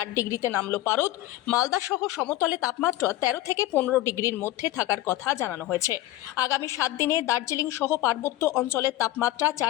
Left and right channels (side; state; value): right; quieter; 15.8 dB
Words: ডিগ্রিতে নামল পারদ। মালদা সহ সমতলে তাপমাত্রা 13 থেকে 15 ডিগ্রির মধ্যে থাকার কথা জানানো হয়েছে। আগামী 7 দিনে দার্জিলিং সহ পার্বত্য অঞ্চলের তাপমাত্রা